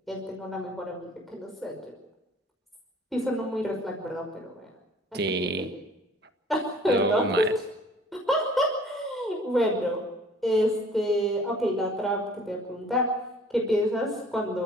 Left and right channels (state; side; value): normal; both; correlation 0.52